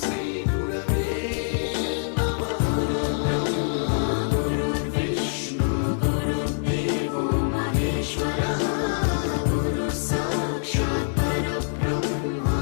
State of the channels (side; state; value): right; silent; digital silence